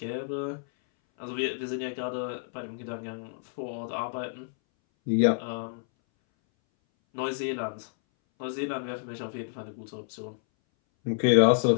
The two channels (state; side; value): silent; right; 58 dB below the other